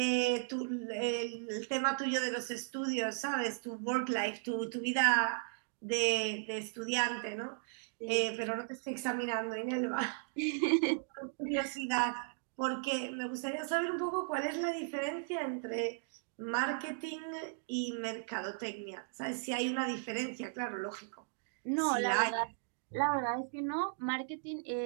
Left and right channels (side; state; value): left; silent; digital silence